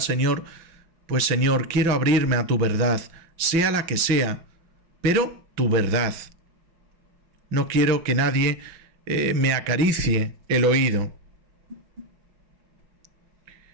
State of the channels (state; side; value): late; left; 5.9 ms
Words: Señor, pues Señor, quiero abrirme a tu verdad, sea la que sea, pero tu verdad. No quiero que nadie me acaricie el oído.